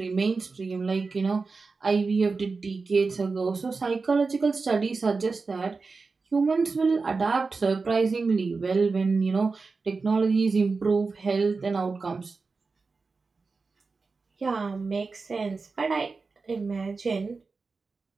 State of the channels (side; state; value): left; quieter; 4.3 dB